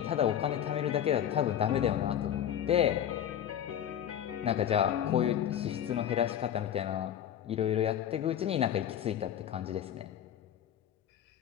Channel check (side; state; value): right; quieter; 10.1 dB